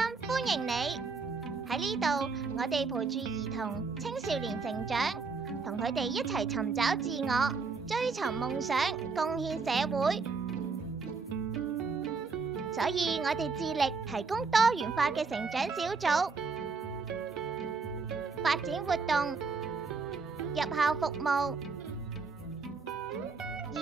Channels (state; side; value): quieter; left; 4.6 dB